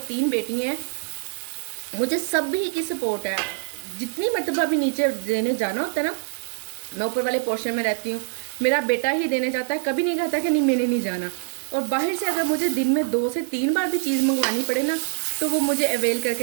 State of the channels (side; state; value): left; silent; 62 dB below the other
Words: 3 बेटी हैं। मुझे सभी की सपोर्ट है। जितनी मरतबा भी नीचे देने जाना होता है ना, मैं ऊपर वाले पोर्शन में रहती हूँ, मेरा बेटा ही देने जाता है, कभी नहीं कहता कि नहीं मैंने नहीं जाना। और बाहर से अगर मुझे दिन में 2 से 3 बार भी चीज़ मंगवानी पड़े ना तो वो मुझे अवेल